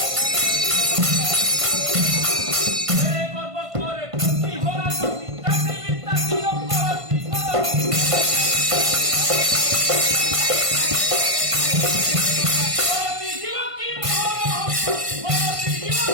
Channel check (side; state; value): left; late; 1.5 ms